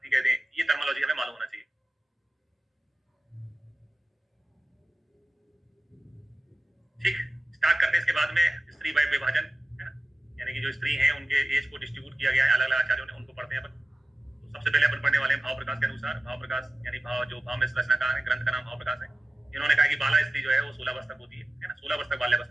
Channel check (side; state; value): both; normal; correlation 0.96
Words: कहते हैं। ये टर्मिनोलॉजी हमें मालूम होना चाहिए। ठीक, स्टार्ट करते हैं इसके बाद में स्त्री वय विभाजन, है ना, यानी कि जो स्त्री हैं उनके एज को डिस्ट्रीब्यूट किया गया है अलग अलग आचार्यों ने, उनको पढ़ते हैं अपन। तो सबसे पहले अपन पढ़ने वाले हैं भाव प्रकाश के अनुसार। भाव प्रकाश यानी भाव, जो भाव में रचनाकार है, ग्रंथ का नाम भाव प्रकाश है। इन्होंने कहा कि बाला स्त्री जो है वो 16 वर्ष तक होती है ना, 16 वर्ष तक